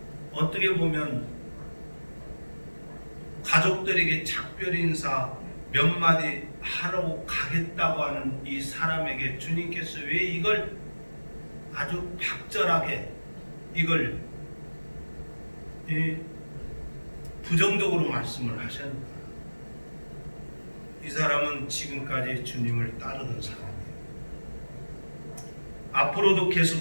어떻게 보면 가족들에게 작별 인사 몇 마디 하러 가겠다고 하는 이 사람에게 주님께서 왜 이걸 아주 박절하게 이걸 부정적으로 말씀을 하셨는가? 이 사람은 지금까지 주님을 따르던 사람이에요. 앞으로도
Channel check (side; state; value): both; inverted; correlation -1.00